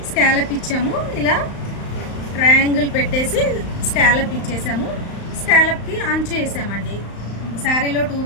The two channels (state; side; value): late; right; 35 ms